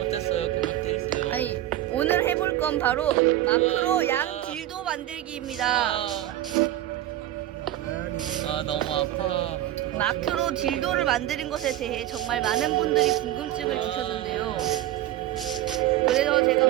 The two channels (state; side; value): quieter; left; 13.8 dB